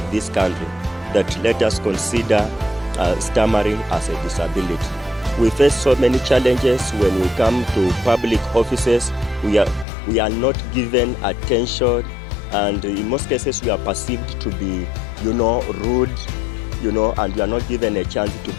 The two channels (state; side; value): drops out; right; at 9.9 s